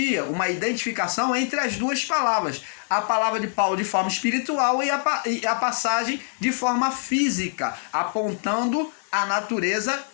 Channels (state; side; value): silent; right; digital silence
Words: uma identificação entre as duas palavras. A palavra de Paulo de forma espiritual e a passagem de forma física, apontando a natureza